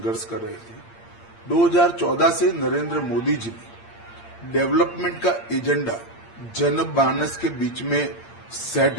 कर रहे थे। 2014 से नरेंद्र मोदी जी ने डेवलपमेंट का एजेंडा जनमानस के बीच में सेट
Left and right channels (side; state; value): right; late; 8.7 ms